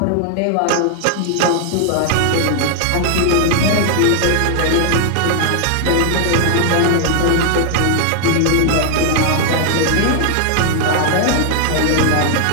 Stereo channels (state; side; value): different; both; correlation 0.00